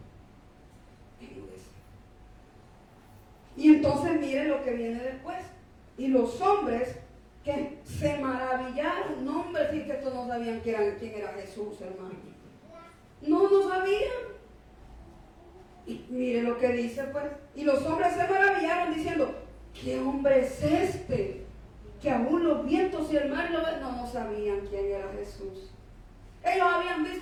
Y entonces mire lo que viene después. Y los hombres que se maravillaron, no, hombre, sí que estos no sabían quién era Jesús, hermano. No sabían. Y mire lo que dice, pues. Y los hombres se maravillaron diciendo: ¿qué hombre es este? Que aún los vientos y el mar lo ven. No sabían quién era Jesús. Ellos habían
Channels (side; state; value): both; identical; correlation 1.00